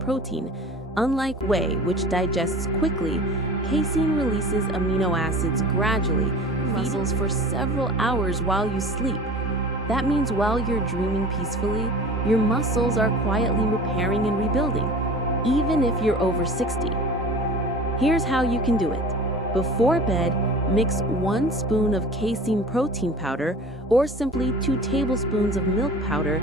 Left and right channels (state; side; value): normal; both; correlation 0.40